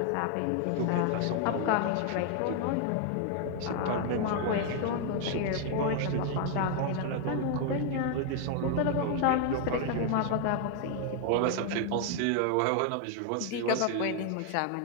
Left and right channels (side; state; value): both; different; correlation 0.00